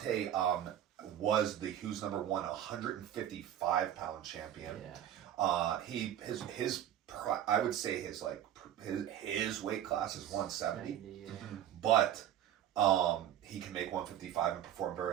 was the Who's Number 1 155 pound champion. Yeah. I would say his weight class is 170, Yeah. but he can make 155 and perform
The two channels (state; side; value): quieter; left; 11.1 dB